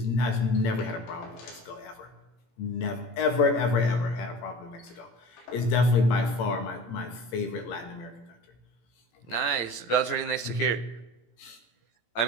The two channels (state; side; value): late; right; 18 ms